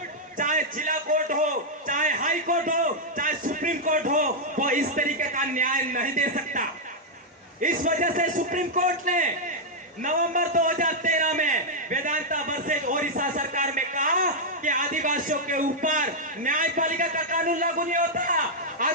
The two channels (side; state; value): both; normal; correlation -0.03